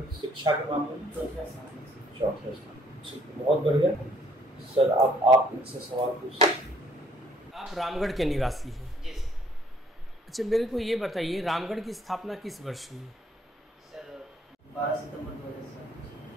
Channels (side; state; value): both; normal; correlation 0.63